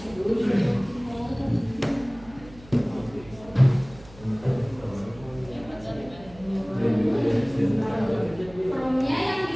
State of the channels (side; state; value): right; noise; hum, 21 dB below the sound